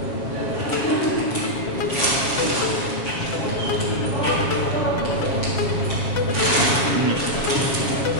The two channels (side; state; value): right; late; 7.3 ms